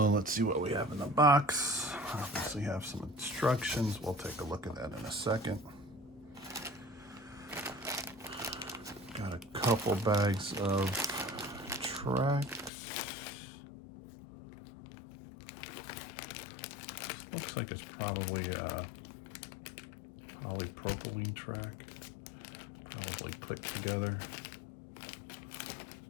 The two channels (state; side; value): drops out; right; at 12.7 s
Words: let's see what we have in the box. Obviously have some instructions. We'll take a look at that in a second. Got a couple bags of tracks. Looks like it's probably a polypropylene track. Probably clicked together.